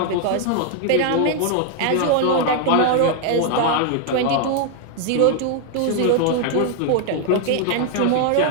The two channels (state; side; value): different; both; correlation 0.00